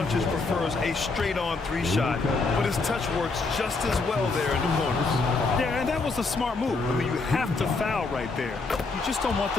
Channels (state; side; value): quieter; right; 3.9 dB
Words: prefers a straight-on three-shot, but his touch works just as well there in the corners. Yeah, and that was a smart move. I mean, you have to foul right there. You just don't want